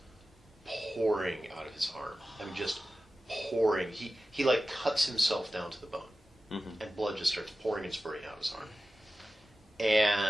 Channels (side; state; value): both; normal; correlation 0.95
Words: pouring out of his arm. I mean, just pouring. He like cuts himself down to the bone, and blood just starts pouring and spurting out of his arm.